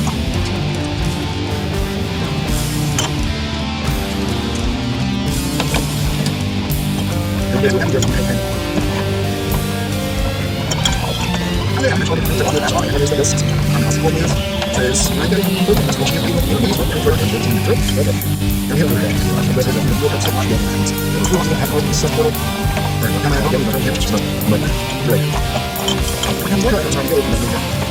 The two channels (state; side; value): identical; both; correlation 1.00